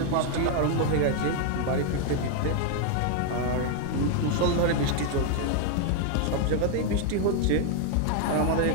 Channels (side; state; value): both; different; correlation 0.00